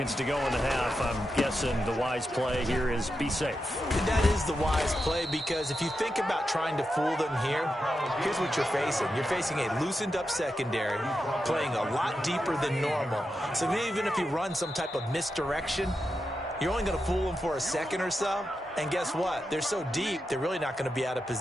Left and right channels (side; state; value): both; normal; correlation 0.88